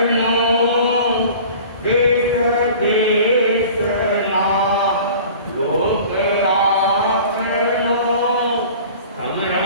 देश देश ना लोक आपनो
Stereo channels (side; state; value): both; inverted; correlation -0.43